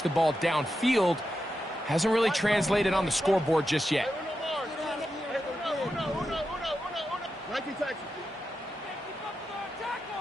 the ball downfield, hasn't really translated on the scoreboard just yet.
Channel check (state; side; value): normal; both; correlation 0.88